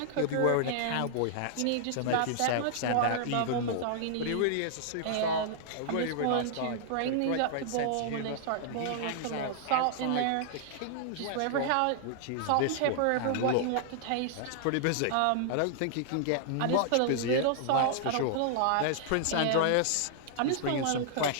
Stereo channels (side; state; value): both; different; correlation -0.01